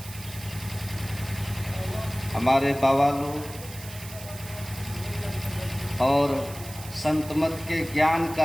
हमारे बाबा लोग और संत मत के ज्ञान का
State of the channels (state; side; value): noise; right; hiss, 15 dB below the sound